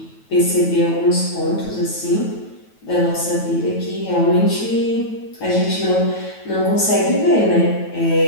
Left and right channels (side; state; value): right; late; 9.2 ms